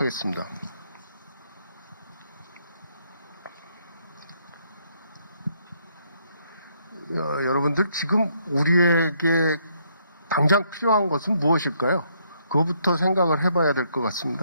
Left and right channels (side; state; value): both; inverted; correlation -0.71